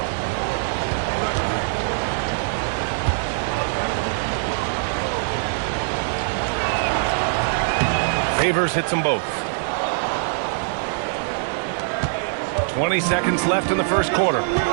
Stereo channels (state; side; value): silent; left; digital silence